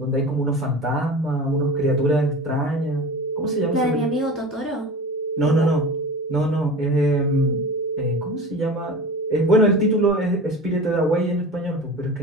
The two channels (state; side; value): normal; both; correlation 0.34